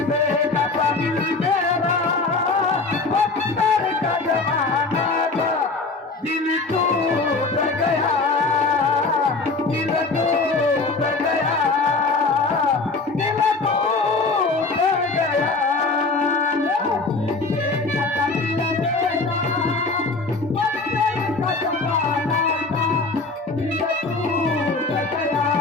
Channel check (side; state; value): right; quieter; 3.8 dB